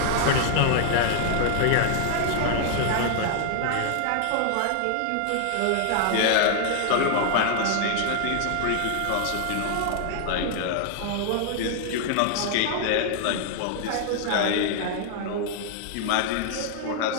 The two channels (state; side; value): different; both; correlation 0.00